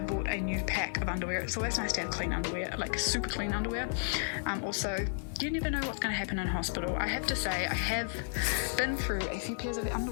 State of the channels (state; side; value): silent; right; digital silence